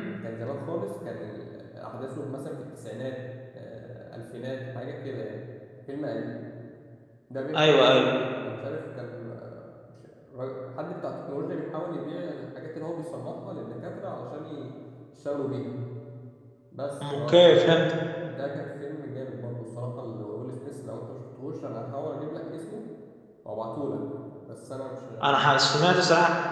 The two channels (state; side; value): identical; both; correlation 1.00